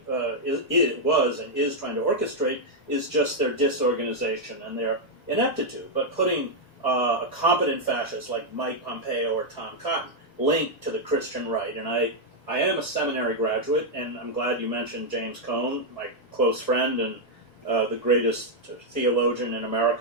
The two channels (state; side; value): normal; both; correlation -0.02